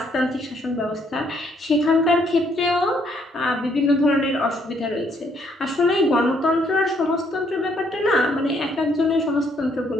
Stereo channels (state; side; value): normal; both; correlation 0.69